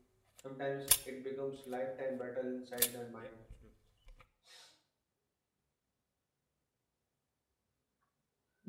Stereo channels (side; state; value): both; identical; correlation 1.00